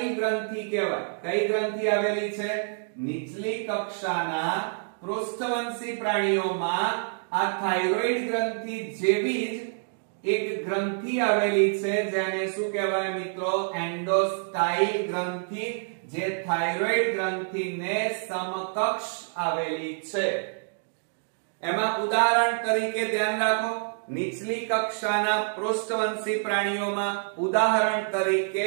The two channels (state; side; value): silent; left; digital silence